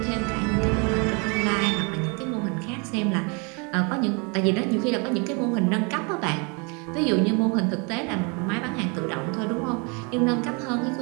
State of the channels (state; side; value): quieter; left; 32.6 dB